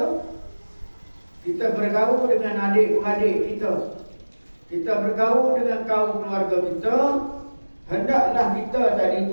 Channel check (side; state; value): both; inverted; correlation -1.00